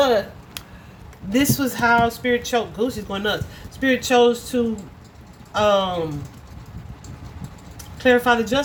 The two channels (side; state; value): both; identical; correlation 1.00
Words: this was how Spirit chose. Goosey's going nuts. Spirit chose to clarify the